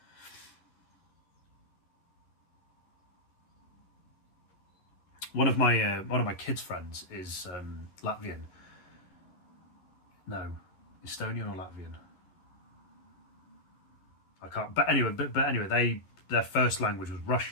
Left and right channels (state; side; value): late; right; 11 ms